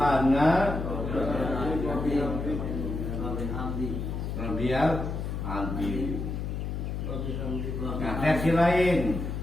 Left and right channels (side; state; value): left; noise; hum, 4 dB below the sound